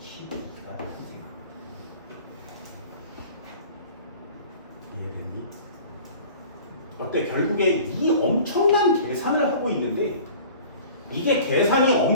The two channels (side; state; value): both; inverted; correlation -0.44